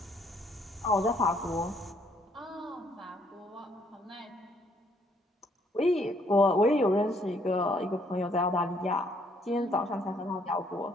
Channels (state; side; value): normal; both; correlation 0.67